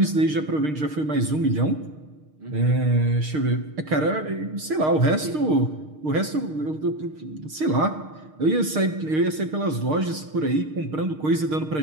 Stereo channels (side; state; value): left; late; 6.5 ms